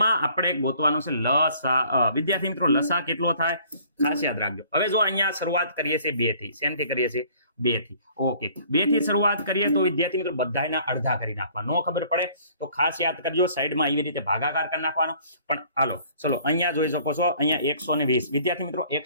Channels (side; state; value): both; inverted; correlation -0.56